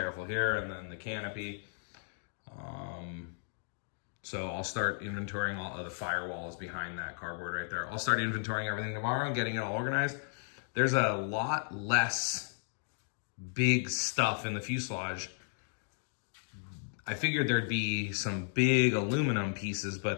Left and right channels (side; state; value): right; silent; digital silence